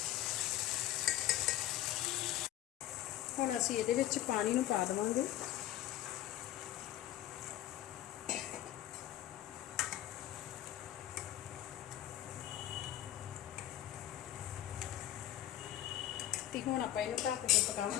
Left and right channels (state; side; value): quieter; right; 13.5 dB